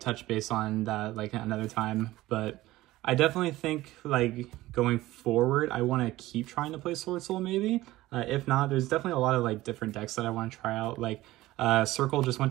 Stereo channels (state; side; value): quieter; left; 17.1 dB